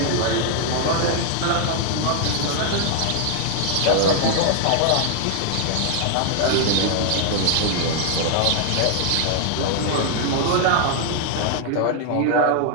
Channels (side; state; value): both; different; correlation 0.00